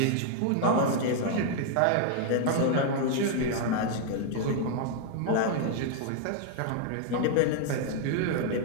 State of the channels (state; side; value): different; both; correlation 0.00